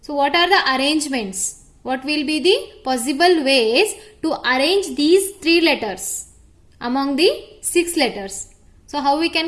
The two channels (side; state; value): both; identical; correlation 1.00